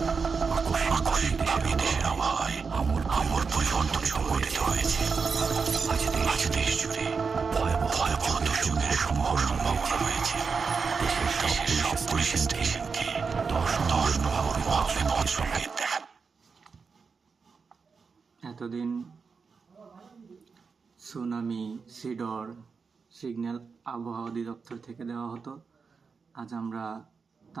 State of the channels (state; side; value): quieter; left; 5.2 dB